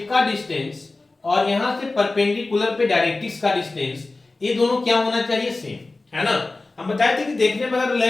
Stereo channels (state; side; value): quieter; right; 3.3 dB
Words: का डिस्टेंस और यहाँ से परपेंडिकुलर पे डायरेक्ट्रिक्स का डिस्टेंस, ये दोनों क्या होना चाहिए, सेम, है ना। हम बताए थे कि देखने में अगर